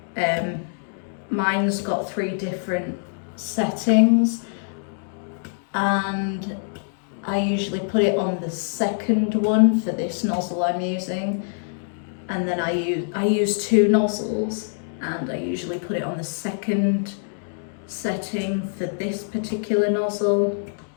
Mine's got 3 different settings, and I usually put it on the second one for this nozzle I'm using, and then I use 2 nozzles, and I usually put it on the second setting for this particular nozzle.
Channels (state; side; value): silent; right; digital silence